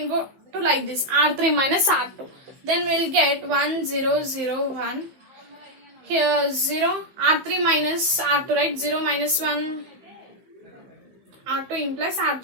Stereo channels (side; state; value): left; late; 15 ms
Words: go to like this R3 minus R2. Then we'll get 1 0 0 1. Here 0 R3 minus R2, right? 0 minus 1 R2 implies